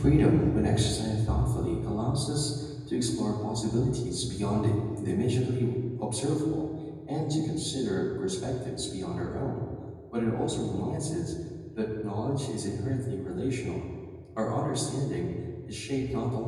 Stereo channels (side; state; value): both; identical; correlation 1.00